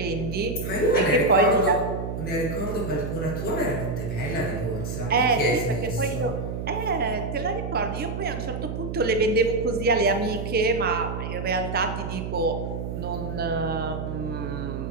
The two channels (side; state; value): right; noise; hum, 5 dB below the sound